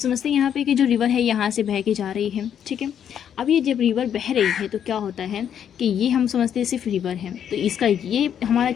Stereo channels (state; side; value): quieter; right; 9.0 dB